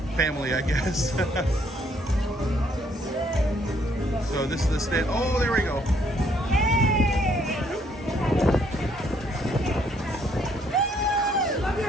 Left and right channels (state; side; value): normal; both; correlation 0.68